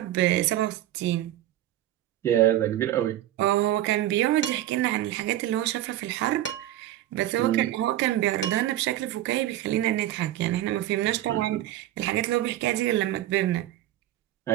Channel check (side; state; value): left; quieter; 13.6 dB